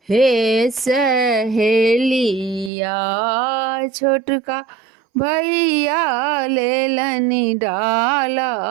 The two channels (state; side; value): drops out; left; at 2.7 s